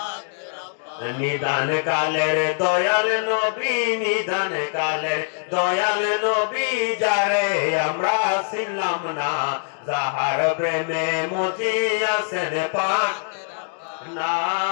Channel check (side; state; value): right; silent; digital silence